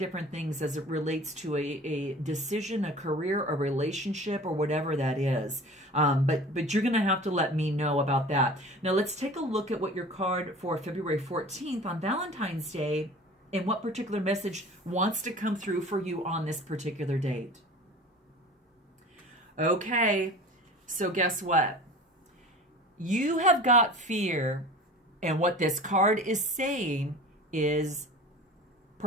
things as it relates to a decision, a career, a relationship, or whatever that is. But you're going to have to let me know about that. Now, let's take a look at what your card for February 14th on Valentine's Day and what particular message wants to come through for you on this particular date. Okay, so guess what? You have got fear, and what this card is saying is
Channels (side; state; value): both; normal; correlation 0.40